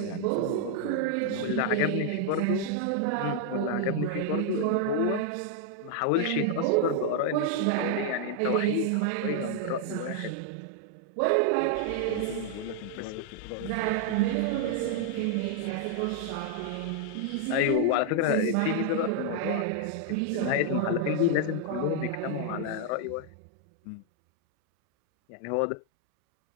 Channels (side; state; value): both; different; correlation 0.00